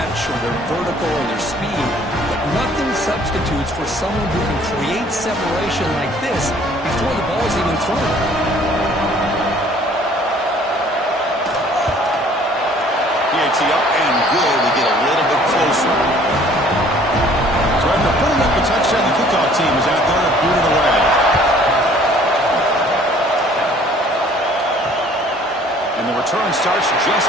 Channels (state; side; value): normal; both; correlation 0.55